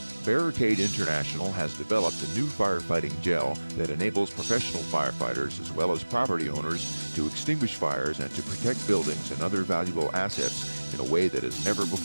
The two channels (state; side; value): inverted; both; correlation -1.00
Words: Barricade International has developed a new firefighting gel that enables professional firefighters as well as property owners to extinguish fires and to protect buildings and other valuable assets in a way that has never